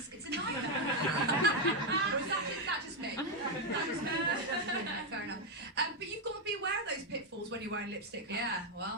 It's a nightmare. Or is that just me? That just me. Fair enough. But you've got to be aware of those pitfalls when you're wearing lipstick. Yeah,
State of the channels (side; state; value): both; normal; correlation 0.03